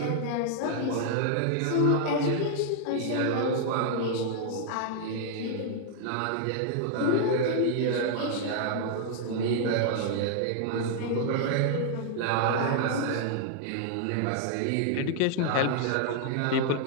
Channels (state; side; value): different; both; correlation -0.01